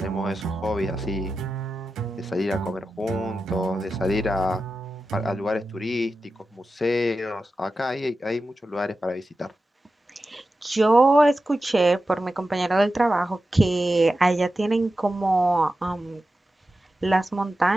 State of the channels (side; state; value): both; normal; correlation 0.92